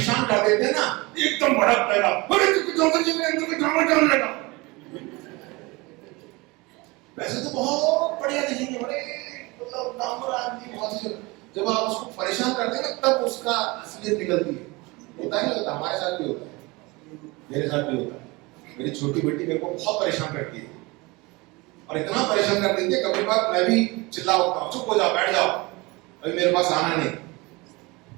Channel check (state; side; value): quieter; left; 24.3 dB